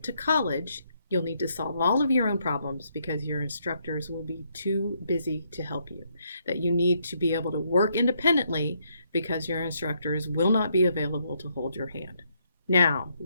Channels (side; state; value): both; inverted; correlation -0.74